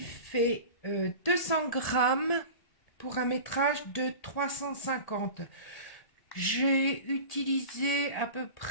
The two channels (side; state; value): right; late; 1.7 ms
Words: fait 200 grammes pour un métrage de 350. J'ai utilisé à peu